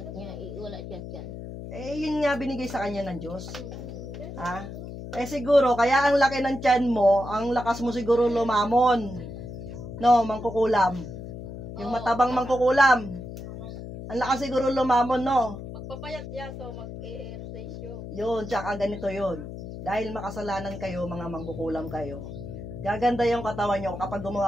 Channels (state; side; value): noise; left; hum, 10 dB below the sound